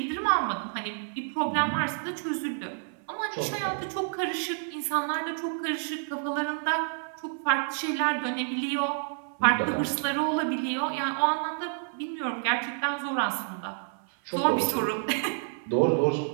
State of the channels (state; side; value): silent; left; 58 dB below the other